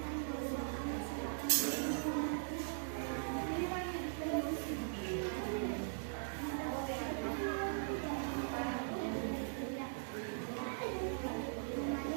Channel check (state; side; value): silent; left; digital silence